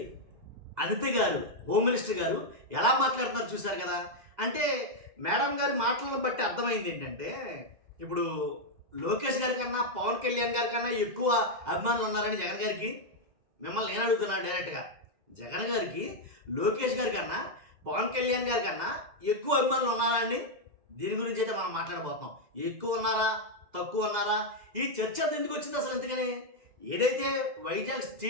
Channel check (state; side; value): late; left; 2.0 ms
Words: అనిత గారు, హోమ్ మినిస్టర్ గారు ఎలా మాట్లాడుతున్నారు చూశారు కదా. అంటే మేడం గారి మాటలను బట్టి అర్థమైంది ఏంటంటే, ఇప్పుడు లోకేష్ గారి కన్నా పవన్ కళ్యాణ్ గారి కన్నా ఎక్కువ అభిమానులు ఉన్నారని జగన్ గారికి. మిమ్మల్ని నేను అడుగుతున్నాను డైరెక్ట్గా, జగన్ గారికి లోకేష్ గారి కన్నా పవన్ కళ్యాణ్ గారి కన్నా ఎక్కువ అభిమానులు ఉన్నారా అండి? దీని గురించి అయితే మనం మాట్లాడబోతున్నాం. ఎక్కువ ఉన్నారా, తక్కువ ఉన్నారా, ఈ చర్చ ఎందుకు వచ్చింది అసలు? ఎందుకని ఏదైతే వైజాగ్